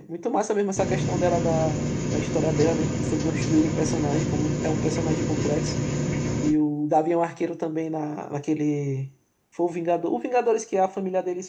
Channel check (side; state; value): both; identical; correlation 1.00